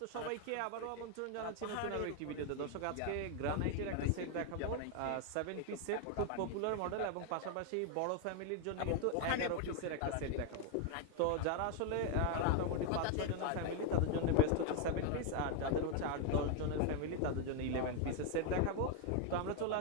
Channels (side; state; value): both; different; correlation 0.01